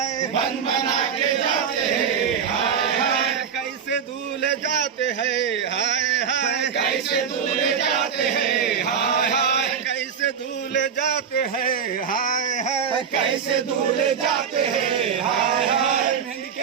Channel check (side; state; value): left; quieter; 7.2 dB